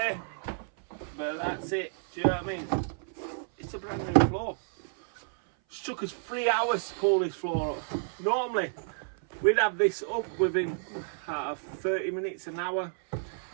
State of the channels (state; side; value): silent; left; 56 dB below the other